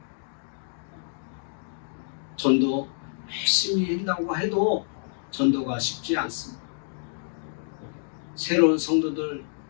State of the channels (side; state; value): right; silent; digital silence